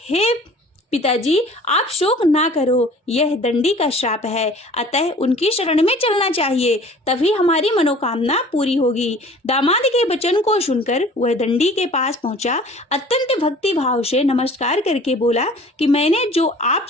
हे पिताजी, आप शोक ना करो, यह दंडी का श्राप है, अतः उनकी शरण में चलना चाहिए, तभी हमारी मनोकामना पूरी होगी। दामाद के वचन को सुनकर वह दंडी के पास पहुंचा। अत्यंत भक्ति भाव से नमस्कार करके बोला कि मैंने जो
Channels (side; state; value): both; normal; correlation 0.47